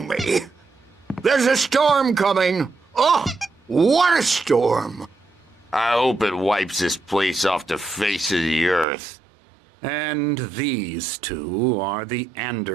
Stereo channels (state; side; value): drops out; left; at 8.8 s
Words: me. There's a storm coming. Oh, what a storm. I hope it wipes this place off the face of the earth. And these two are the